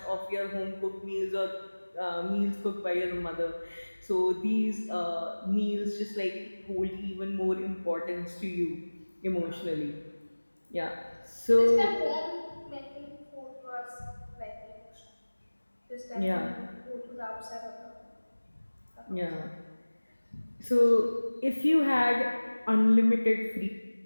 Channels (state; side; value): inverted; both; correlation -1.00